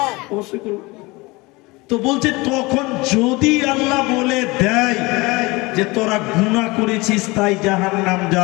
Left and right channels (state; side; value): quieter; right; 23.5 dB